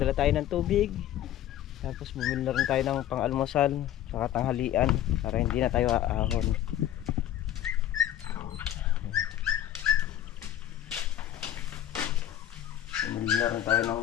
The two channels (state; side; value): quieter; right; 11.9 dB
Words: tayo ng tubig. Tapos bumili na rin tayo ng pang-almusal saka tanghalian para hindi na tayo aahon. Bumili na rin tayo ng